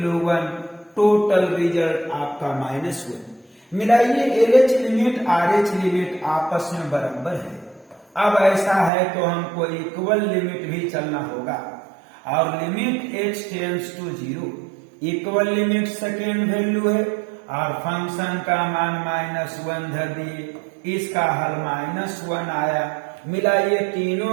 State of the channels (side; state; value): left; drops out; at 8.9 s